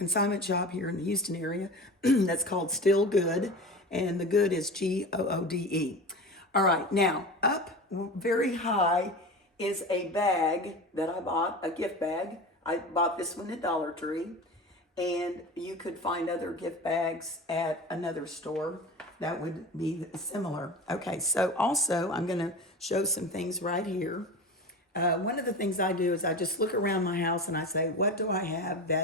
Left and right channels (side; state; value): both; normal; correlation 0.31